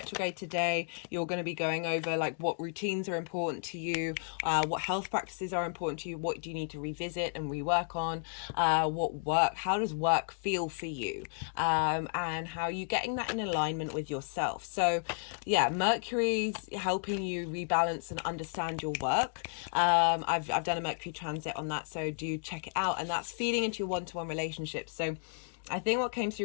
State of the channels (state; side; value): silent; right; digital silence